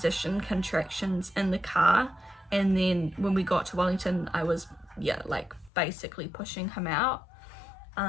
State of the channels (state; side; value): drops out; right; at 5.7 s